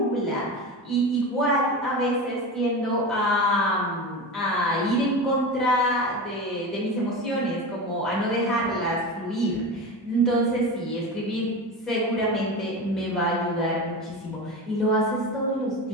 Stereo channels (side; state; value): both; normal; correlation 0.26